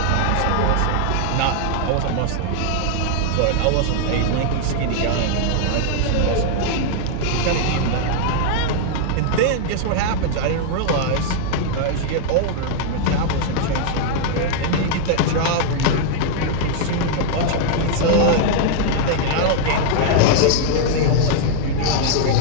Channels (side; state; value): both; different; correlation -0.01